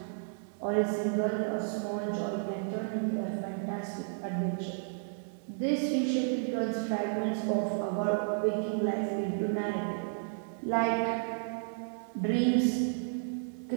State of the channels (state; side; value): silent; left; 56 dB below the other